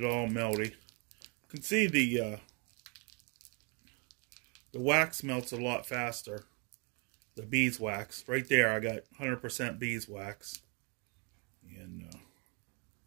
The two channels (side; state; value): left; quieter; 33.8 dB